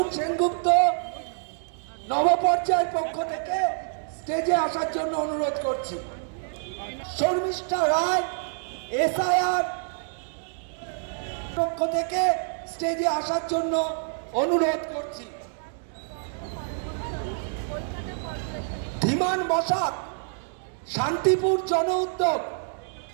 সেনগুপ্ত নবপর্যায়ের পক্ষ থেকে স্টেজে আসার জন্য অনুরোধ করছি। শর্মিষ্ঠা রায় এসআইআর পক্ষ থেকে স্টেজে আসার জন্য অনুরোধ করছি। ধীমান বসাক শান্তিপুর জন উদ্যোগ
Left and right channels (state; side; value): silent; left; digital silence